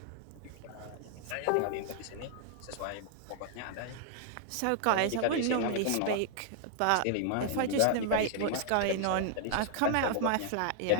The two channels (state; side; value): different; both; correlation -0.01